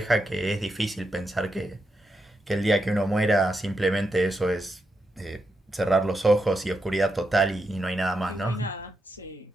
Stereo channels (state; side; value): normal; both; correlation 0.85